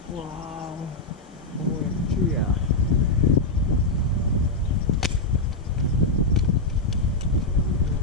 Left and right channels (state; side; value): quieter; right; 3.0 dB